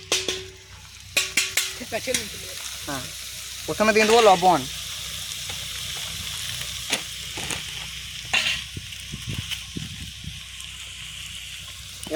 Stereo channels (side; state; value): both; identical; correlation 1.00